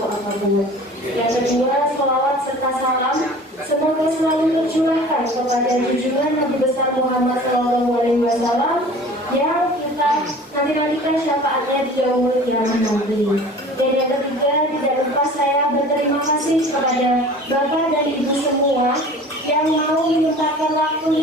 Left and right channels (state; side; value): normal; both; correlation 0.43